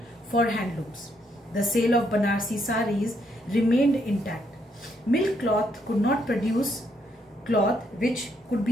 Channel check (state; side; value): normal; both; correlation 0.74